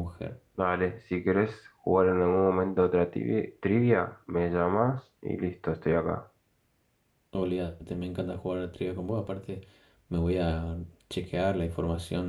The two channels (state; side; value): identical; both; correlation 1.00